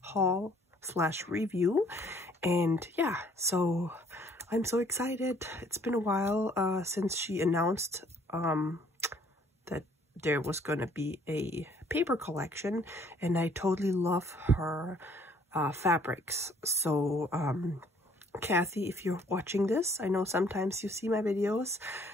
haul slash review. And yeah, so I'm so excited. It's been a while since she announced that there was gonna be a paper collection, and I totally love her fabrics. So Cathe, if you're watching this, I know sometimes you see my videos,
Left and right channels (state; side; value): normal; both; correlation 0.61